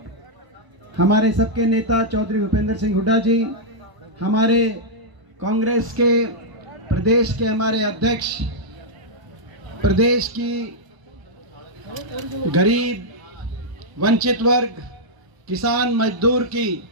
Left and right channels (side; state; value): left; late; 1.0 ms